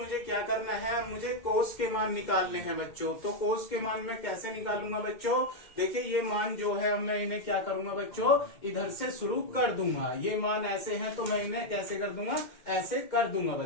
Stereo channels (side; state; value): right; late; 2.1 ms